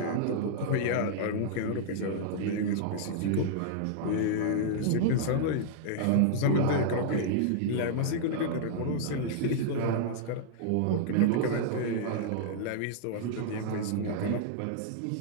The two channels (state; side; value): different; both; correlation -0.01